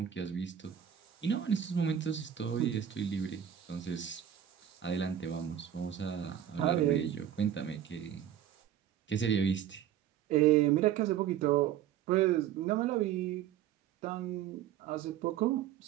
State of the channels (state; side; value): quieter; left; 10.1 dB